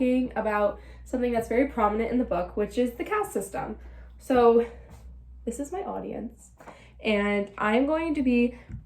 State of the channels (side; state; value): both; identical; correlation 1.00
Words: about something that's very prominent in the book, which is the caste system. So this is my audience, and I'm going to be